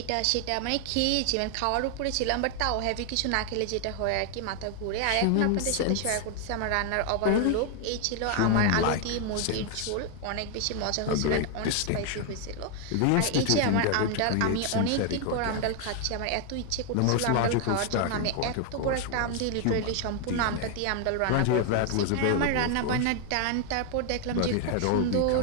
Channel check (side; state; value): both; different; correlation 0.00